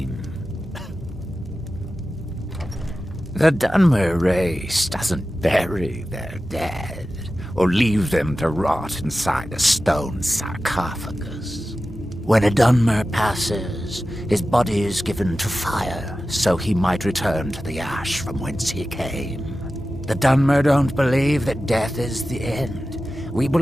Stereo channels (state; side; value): normal; both; correlation 0.94